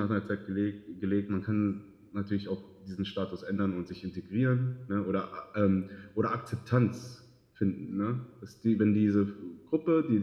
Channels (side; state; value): both; identical; correlation 1.00